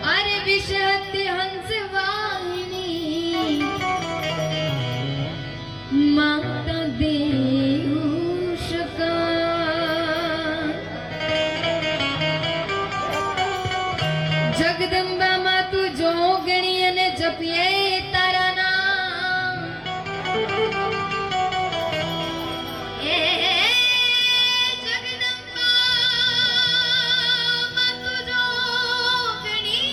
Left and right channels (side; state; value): both; identical; correlation 1.00